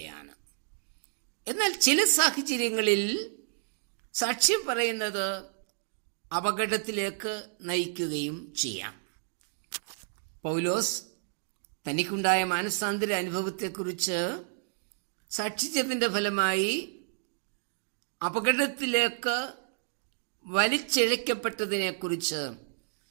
എന്നാൽ ചില സാഹചര്യങ്ങളിൽ സാക്ഷ്യം പറയുന്നത് അപകടത്തിലേക്ക് നയിക്കുകയും ചെയ്യാം. പൗലോസ് തനിക്കുണ്ടായ മാനസാന്തര അനുഭവത്തെക്കുറിച്ച് സാക്ഷിച്ചതിൻ്റെ ഫലമായി അപകടത്തിലേക്ക് വലിച്ചിഴക്കപ്പെട്ടതിനെക്കുറിച്ച്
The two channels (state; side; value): silent; left; digital silence